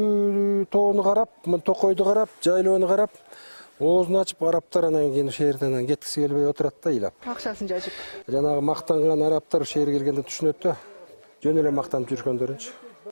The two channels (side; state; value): both; inverted; correlation -1.00